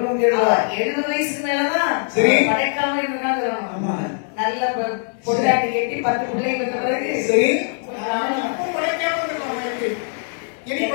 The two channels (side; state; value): right; silent; 56 dB below the other